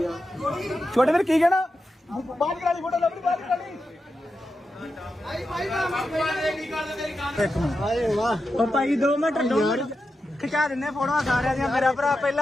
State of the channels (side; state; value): both; normal; correlation 0.89